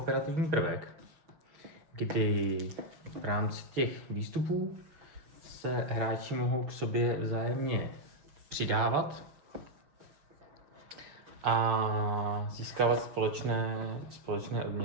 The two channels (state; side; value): late; left; 6.4 ms